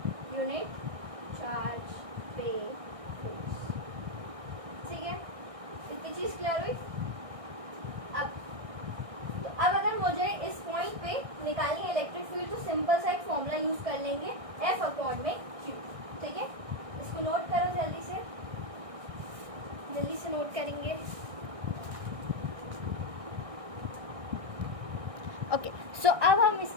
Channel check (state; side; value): late; left; 1.6 ms